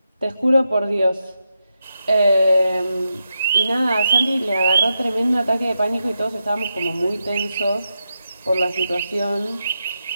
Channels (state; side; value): inverted; both; correlation -0.86